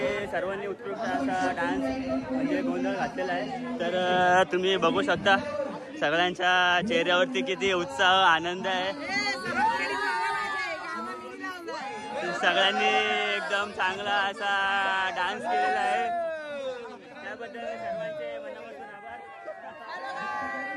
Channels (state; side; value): identical; both; correlation 1.00